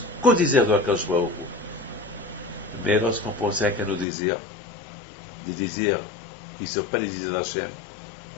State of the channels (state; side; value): drops out; right; at 4.0 s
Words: qu'au désir de Akadosh Baruch Hu. Mais lorsqu'on pensait qu'à nos désirs, des désirs qui ne sont pas les désirs d'Hachem,